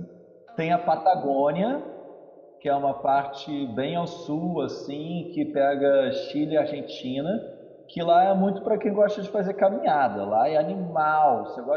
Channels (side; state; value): both; identical; correlation 1.00